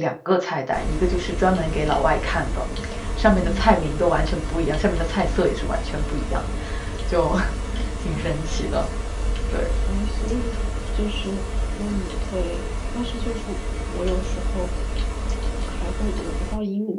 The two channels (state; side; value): identical; both; correlation 1.00